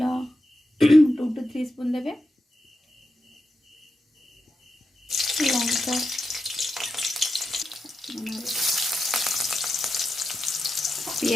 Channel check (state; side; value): normal; both; correlation 0.88